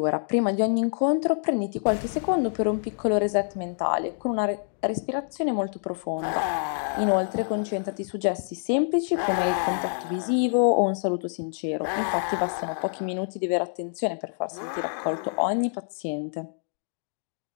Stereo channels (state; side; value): silent; right; digital silence